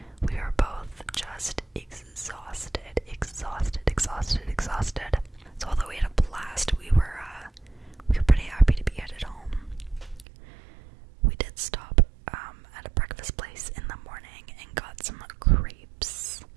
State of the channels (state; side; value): drops out; left; at 10.2 s